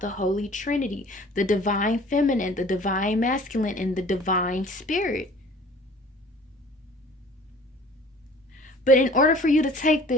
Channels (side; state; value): both; normal; correlation 0.49